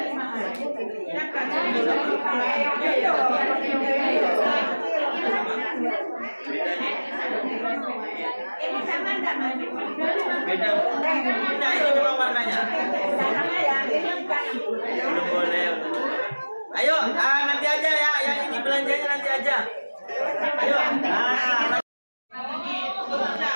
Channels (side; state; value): both; inverted; correlation -1.00